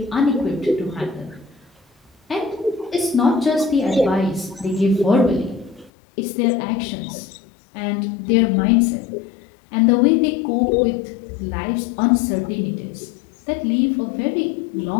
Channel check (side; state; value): right; drops out; at 5.9 s